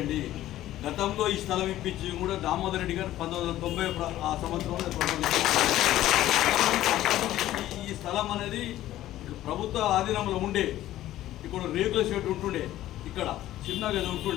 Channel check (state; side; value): quieter; right; 14.1 dB